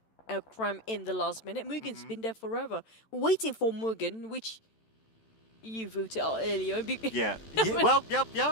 a cram in the last minute. Mugen's been there forever. We're waiting for Mugen, which you voted out earlier. Yeah. Well, yeah.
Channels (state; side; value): late; right; 13 ms